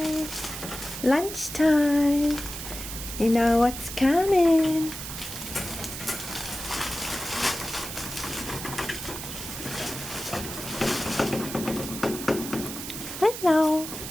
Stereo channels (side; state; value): right; noise; hiss, 8 dB below the sound